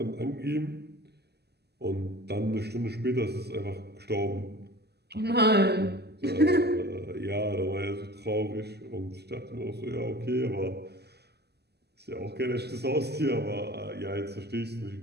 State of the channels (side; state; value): left; late; 0.48 ms